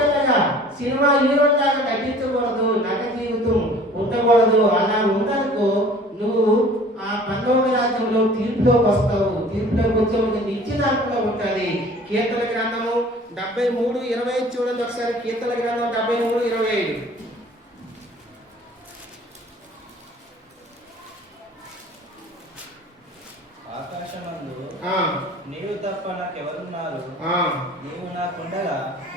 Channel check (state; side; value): normal; both; correlation 0.48